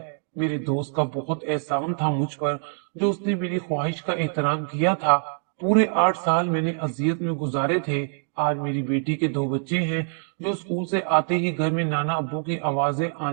میرے دوست کا بہت احسان تھا مجھ پر، جو اس نے میری خواہش کا احترام کیا تھا۔ پورے 8 سال میں نے اذیت میں گزارے تھے۔ آج میری بیٹی کے 2 بچے ہیں، جو اسکول سے آتے ہی گھر میں نانا ابو کی آوازیں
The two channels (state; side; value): silent; left; 58 dB below the other